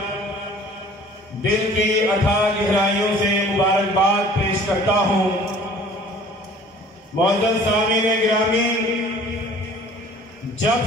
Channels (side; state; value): both; normal; correlation 0.50